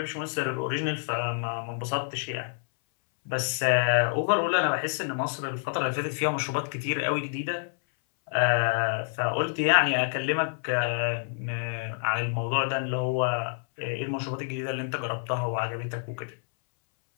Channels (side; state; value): right; silent; 59 dB below the other